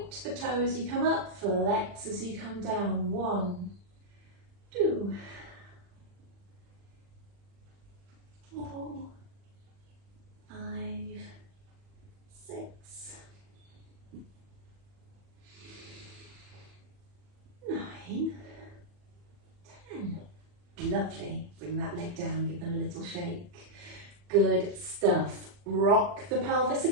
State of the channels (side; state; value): left; late; 40 ms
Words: the toes as you come up, flex as you come down. 1, 2, 4, 5, 6, 9, 10. Lovely. Bring that leg down, give them a little shake. Good stuff. Rock the pelvis